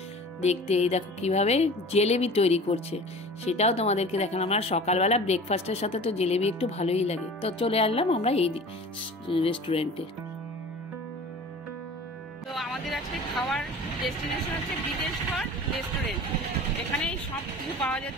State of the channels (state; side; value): normal; both; correlation 0.40